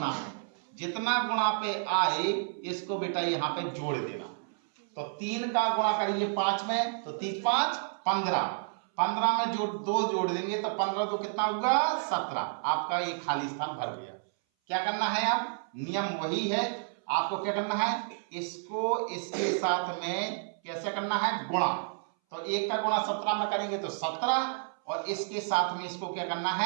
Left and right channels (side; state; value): left; silent; 57 dB below the other